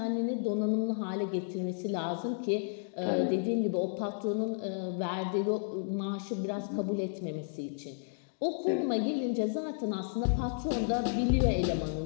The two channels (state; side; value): silent; right; digital silence